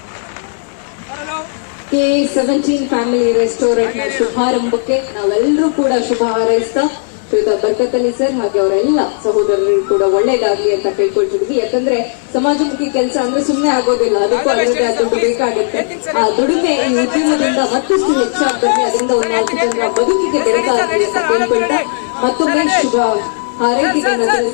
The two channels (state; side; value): silent; right; digital silence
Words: KA17 ಫ್ಯಾಮಿಲಿ ರೆಸ್ಟೋರೆಂಟ್ ನ ಶುಭಾರಂಭಕ್ಕೆ ನಾವೆಲ್ಲರೂ ಕೂಡ ಶುಭ ಹಾರೈಸ್ತಾ ಬರ್ಕತ್ ಅಲಿ ಸರ್ ಹಾಗೆ ಅವರೆಲ್ಲ ಸಹೋದರರು ಕೂಡ ಒಳ್ಳೇದಾಗ್ಲಿ ಅಂತ ಕೇಳ್ಕೊಳ್ತಿದ್ವಿ. ಯಾಕಂದ್ರೆ ಸಮಾಜಮುಖಿ ಕೆಲಸ ಅಂದ್ರೆ ಸುಮ್ಮನೆ ಆಗೋದಿಲ್ಲ, ಅದಕ್ಕೂ ಅದರದ್ದೇ ಆದ ಬೇಕಾಗುತ್ತೆ. ಆ ದುಡಿಮೆ ಈ ಉದ್ಯಮದಿಂದ ಮತ್ತಷ್ಟು ಹೆಚ್ಚಾಗ್ತದೆ, ಅದರಿಂದ ಒಂದು 4 ಜನರ ಬದುಕಿಗೆ ಬೆಳಕಾಗ್ಲಿ ಅಂತ ಕೇಳ್ಕೊಳ್ತಾ ಮತ್ತೊಮ್ಮೆ ಶುಭ ಹಾರೈಕೆಗಳನ್ನ